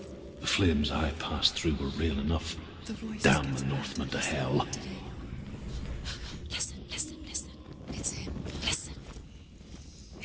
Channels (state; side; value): identical; both; correlation 1.00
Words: The flames I passed through were real enough. The voice Damn gets the Northmen to hell. Listen, listen, listen. It's him. Listen.